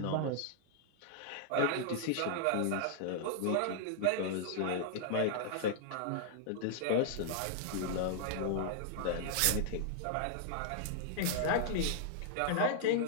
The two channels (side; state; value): both; different; correlation -0.01